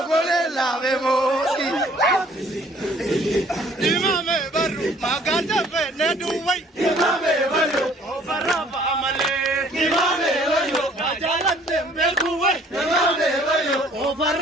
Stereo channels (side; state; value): both; normal; correlation 0.57